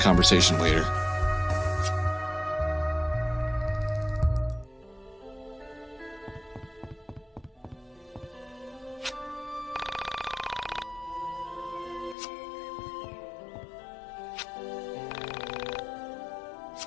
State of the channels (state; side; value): drops out; right; at 12.2 s